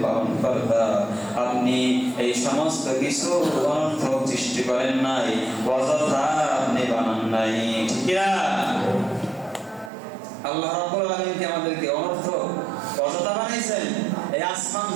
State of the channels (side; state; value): left; drops out; at 9.9 s